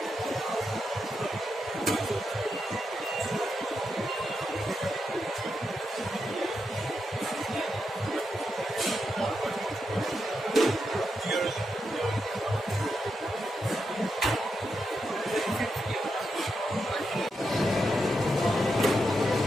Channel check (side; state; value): both; normal; correlation 0.85